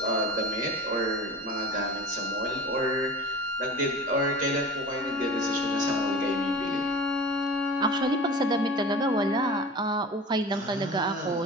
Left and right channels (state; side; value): normal; both; correlation 0.36